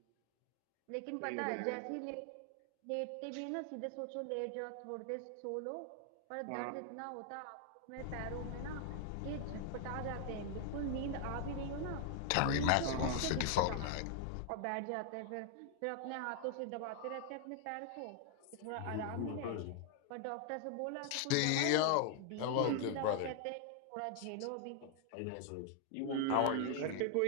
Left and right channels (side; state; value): both; different; correlation 0.00